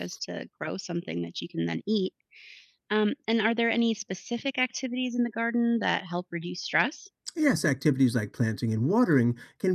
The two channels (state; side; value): identical; both; correlation 1.00